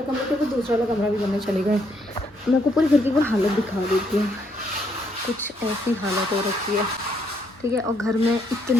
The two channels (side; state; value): both; normal; correlation 0.72